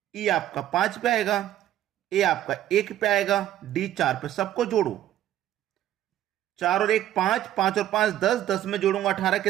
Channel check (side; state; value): left; quieter; 12.5 dB